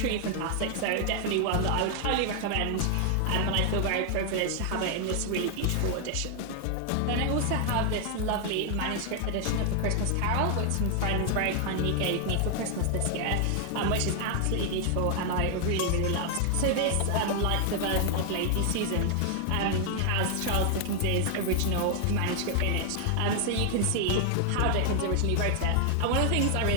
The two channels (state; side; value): different; both; correlation 0.00